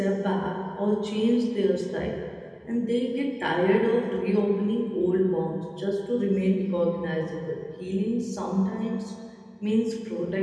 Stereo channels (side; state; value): both; identical; correlation 1.00